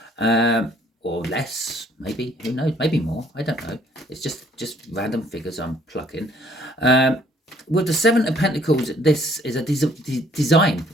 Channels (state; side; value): normal; both; correlation 0.61